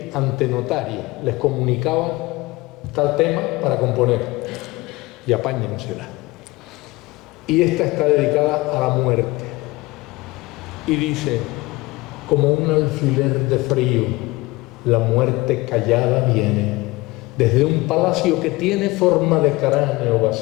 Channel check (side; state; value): right; quieter; 21.4 dB